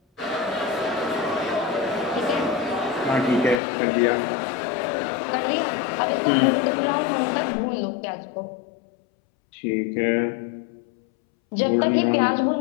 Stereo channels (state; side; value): drops out; right; at 3.6 s